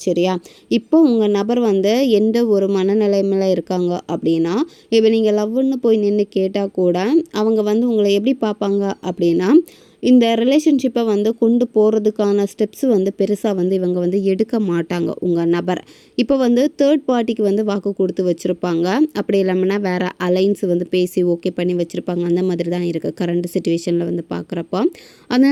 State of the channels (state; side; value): identical; both; correlation 1.00